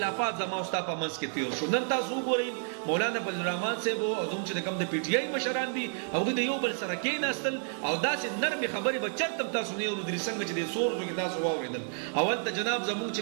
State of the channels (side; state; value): left; silent; 58 dB below the other